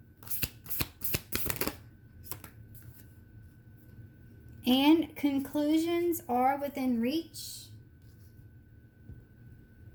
And conclusions are within reach.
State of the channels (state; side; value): identical; both; correlation 1.00